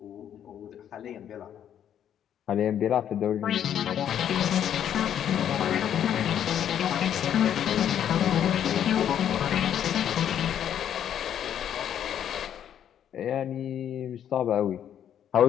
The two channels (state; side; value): quieter; right; 9.7 dB